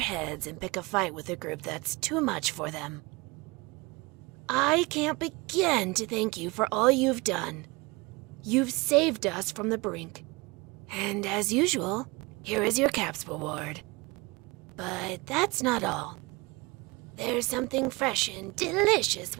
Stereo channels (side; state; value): left; quieter; 25.0 dB